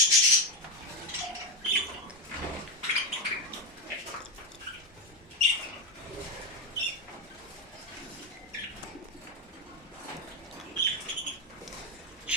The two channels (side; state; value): both; normal; correlation 0.12